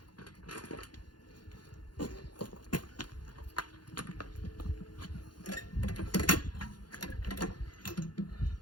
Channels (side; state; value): right; late; 0.70 ms